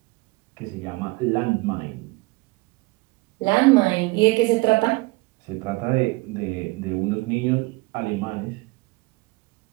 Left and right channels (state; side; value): quieter; left; 24.1 dB